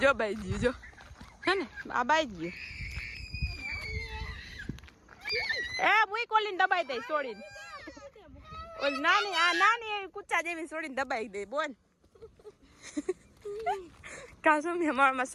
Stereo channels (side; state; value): both; identical; correlation 1.00